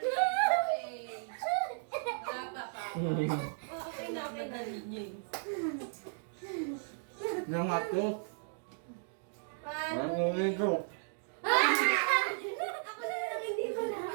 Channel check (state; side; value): silent; left; digital silence